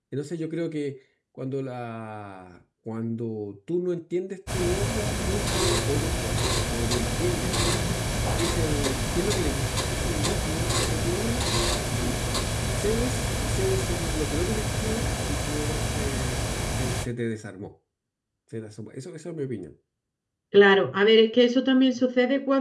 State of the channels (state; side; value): identical; both; correlation 1.00